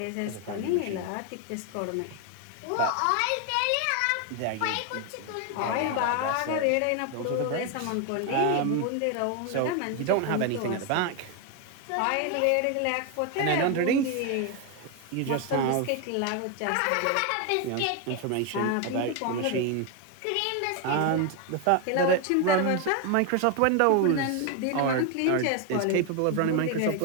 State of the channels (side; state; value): both; different; correlation 0.01